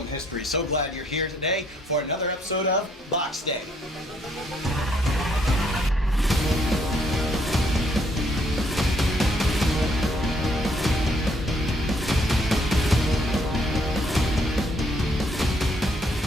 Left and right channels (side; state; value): both; normal; correlation 0.69